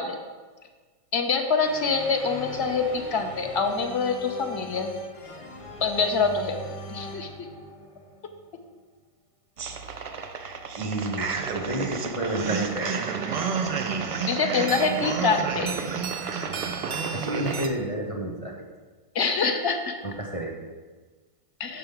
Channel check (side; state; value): right; late; 1.5 ms